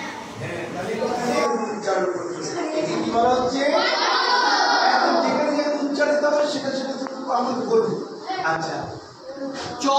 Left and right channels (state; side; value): identical; both; correlation 1.00